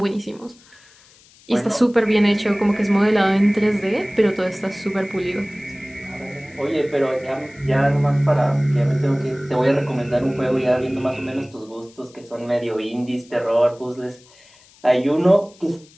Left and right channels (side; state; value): left; noise; hiss, 27 dB below the sound